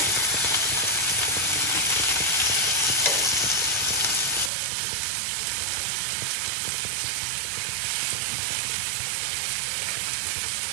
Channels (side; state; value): left; drops out; at 4.5 s